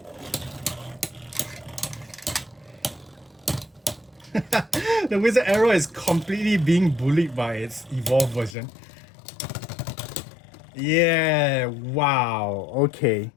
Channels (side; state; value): right; drops out; at 8.6 s